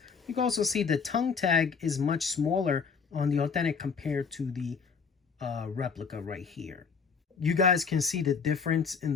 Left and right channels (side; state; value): right; quieter; 5.8 dB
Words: You can also see the tongue tag is much smaller on the authentic compared to the replica right here. You guys can see the difference in